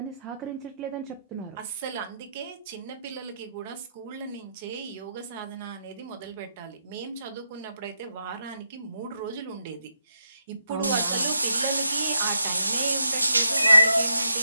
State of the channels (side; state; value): both; inverted; correlation -0.81